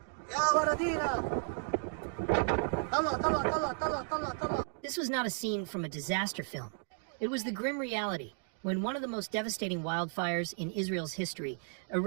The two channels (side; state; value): left; silent; 55 dB below the other